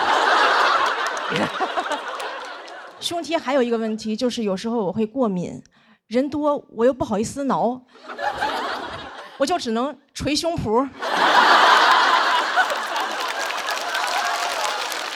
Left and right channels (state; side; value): identical; both; correlation 1.00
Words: ”胸贴还有一个问题，就是有时候我会过敏。人多我又不好意思挠，我就只能捶胸脯。